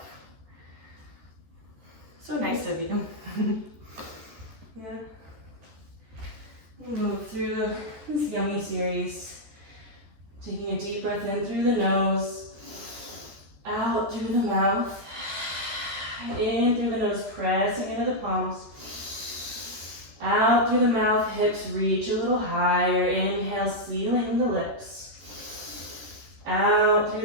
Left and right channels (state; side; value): late; left; 14 ms